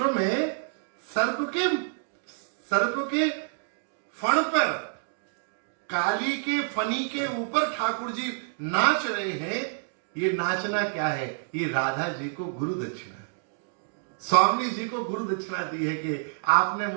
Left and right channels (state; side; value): silent; left; digital silence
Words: में सर्प के फण पर, काली के फनी के ऊपर ठाकुर जी नाच रहे हैं। ये नाचना क्या है? ये राधा जी को गुरु दक्षिणा, स्वामी जी को गुरु दक्षिणा दी है कि आपने